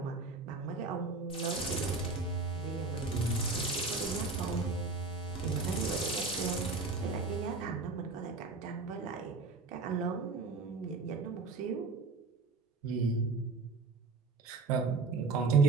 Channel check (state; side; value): quieter; left; 3.9 dB